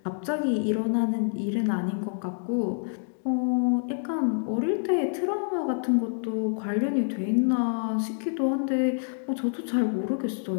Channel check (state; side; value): silent; right; digital silence